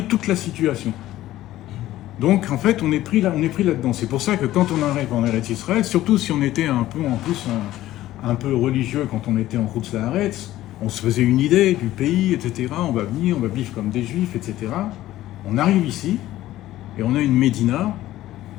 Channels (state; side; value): quieter; right; 14.8 dB